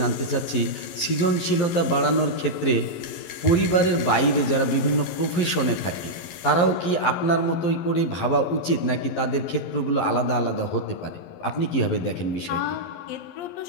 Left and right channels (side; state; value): right; late; 11 ms